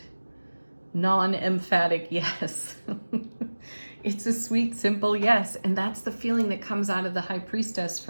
non-emphatic yes. It's a sweet, simple yes. And that's the feeling that comes out of the High Priestess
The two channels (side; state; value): both; inverted; correlation -1.00